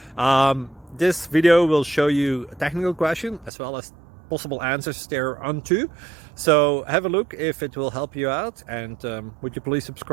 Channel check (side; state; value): left; drops out; at 3.5 s